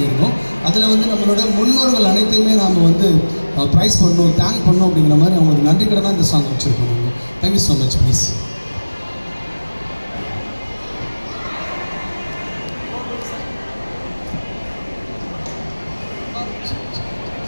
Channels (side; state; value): both; inverted; correlation -1.00